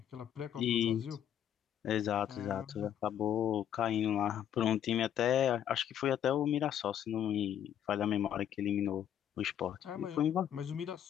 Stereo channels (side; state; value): right; quieter; 9.9 dB